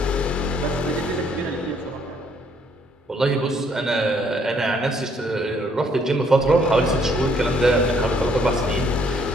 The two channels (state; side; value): normal; both; correlation 0.66